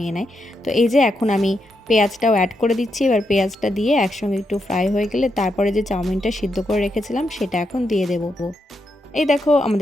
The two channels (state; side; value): normal; both; correlation 0.83